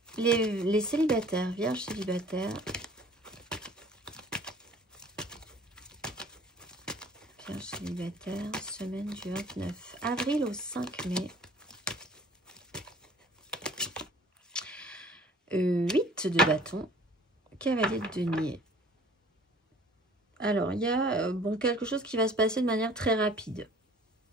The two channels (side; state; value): both; normal; correlation 0.50